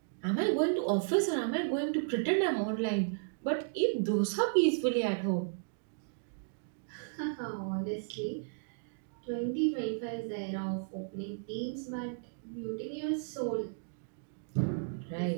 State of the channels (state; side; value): silent; left; digital silence